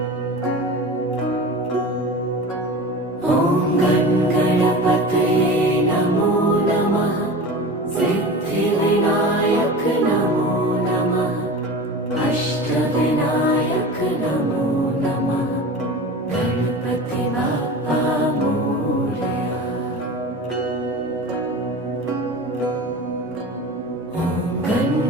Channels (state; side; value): normal; both; correlation 0.32